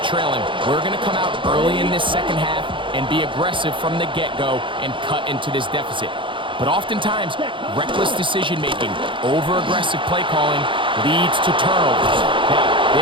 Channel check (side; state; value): left; late; 0.24 ms